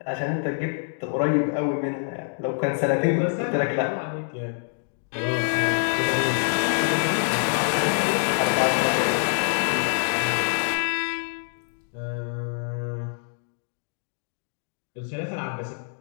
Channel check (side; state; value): right; silent; digital silence